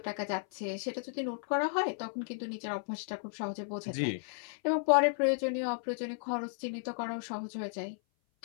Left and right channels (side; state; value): right; silent; 55 dB below the other